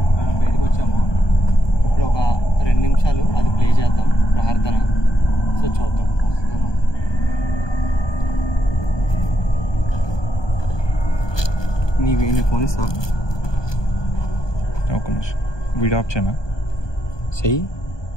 బయటకు వచ్చాము. ఇప్పుడు ఒక 2 నిమిషాలు అది ప్లే చేద్దాం ప్రార్థన. సో చూద్దాం. నీ ఫోన్ ఇస్తా. ఒక నిమిషం వీడియో ఆఫ్ చేయనా? చెయ్యి.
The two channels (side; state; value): right; late; 1.2 ms